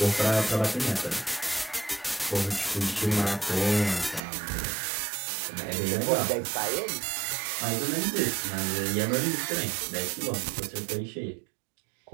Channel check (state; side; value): drops out; left; at 4.2 s